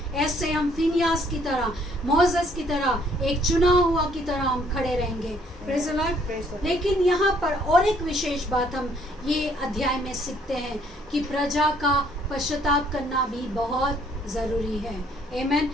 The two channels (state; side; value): normal; both; correlation 0.64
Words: ऐसे हम फिनियास की तरह, मोसेस की तरह, एक चुना हुआ की तरह हम खड़े रहेंगे। Praise the Lord. लेकिन यहाँ पर और एक विशेष बात हम ये अध्याय में सीखते हैं कि प्रजा का पश्चाताप करना भी बहुत ज़रूरी है। आमीन।